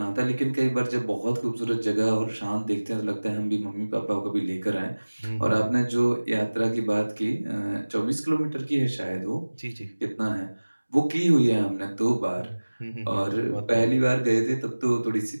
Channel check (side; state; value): both; inverted; correlation -1.00